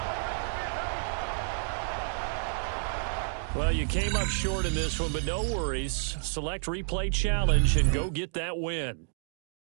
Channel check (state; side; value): silent; left; digital silence